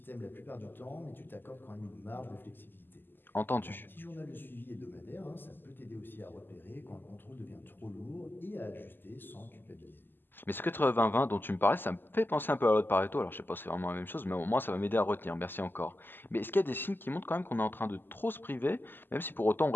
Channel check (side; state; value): right; late; 0.095 ms